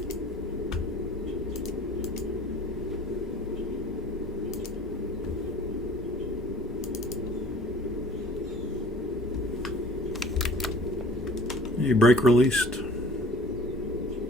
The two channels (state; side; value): normal; both; correlation 0.48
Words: A brake released.